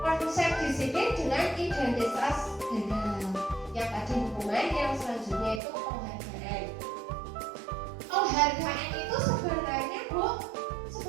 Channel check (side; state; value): left; drops out; at 5.6 s